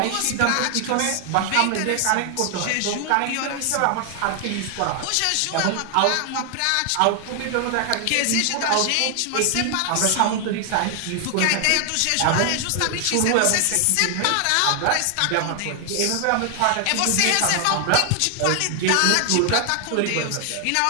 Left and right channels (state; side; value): different; both; correlation 0.00